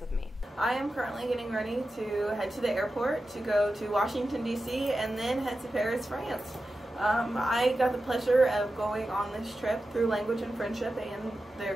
with me. I am currently getting ready to head to the airport to go to Washington, D.C. and then head to Paris, France. I got the pleasure of going on this trip through Language and Friendship and their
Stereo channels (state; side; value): normal; both; correlation 0.92